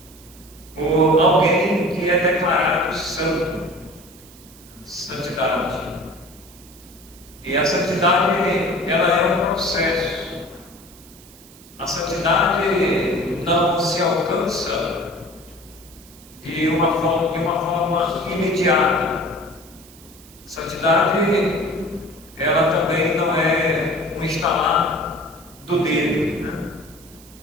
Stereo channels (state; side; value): noise; right; hiss, 23 dB below the sound